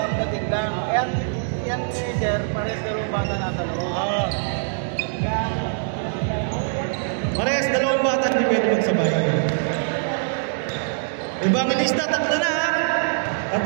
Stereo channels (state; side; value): silent; left; digital silence